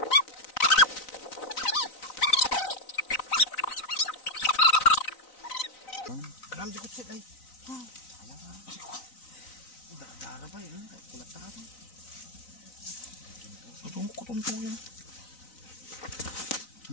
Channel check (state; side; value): late; right; 3.9 ms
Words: Alam di ko sit ay. Sayang nga. Dara ba yun? Kulat na ito. Kutumpo yan.